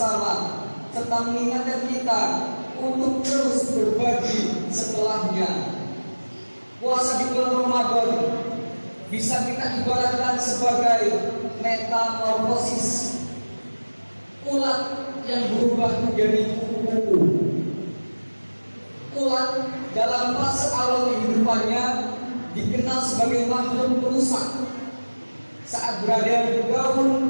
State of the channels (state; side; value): inverted; both; correlation -1.00